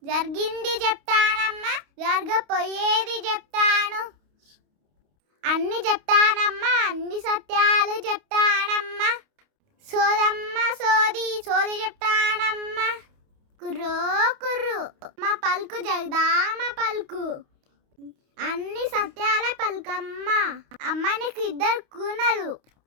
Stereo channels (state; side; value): late; left; 29 ms